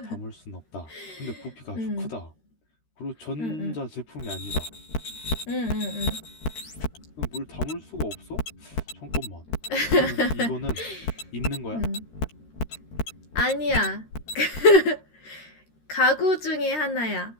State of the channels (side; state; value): right; late; 13 ms